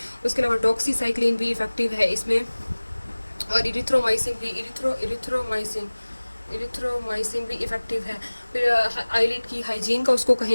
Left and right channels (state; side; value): inverted; both; correlation -1.00